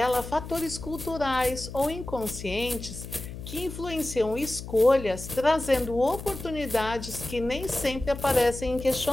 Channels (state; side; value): noise; left; hum, 11 dB below the sound